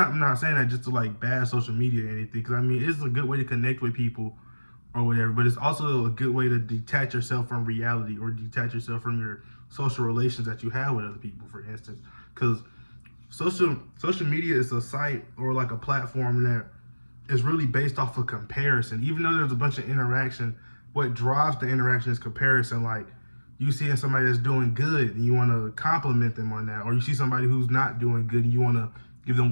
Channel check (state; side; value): inverted; both; correlation -1.00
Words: not saying that just to like bad social media or anything, because I mean it's a good way to connect with people or whatever, but it's also a good way to detach yourself from reality, or detach yourself from your social relations that you have with other people, for instance. Because social media is a site or like a platform that is really based off of comparison. Even though there's a bunch of interaction, what drives the interaction is comparison. Like you see somebody that's doing good and you want to compliment them on that, or you see somebody who's not doing good and you want to give them